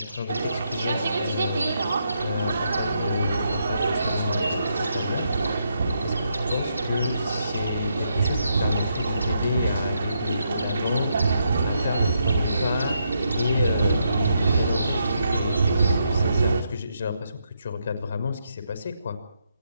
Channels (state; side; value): inverted; both; correlation -0.79